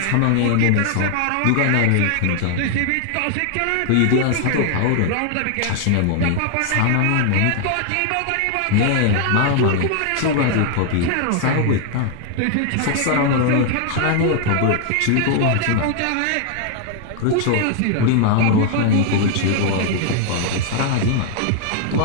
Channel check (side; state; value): both; different; correlation 0.00